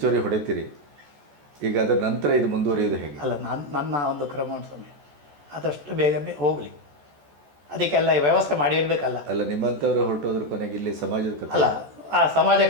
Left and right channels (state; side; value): late; left; 14 ms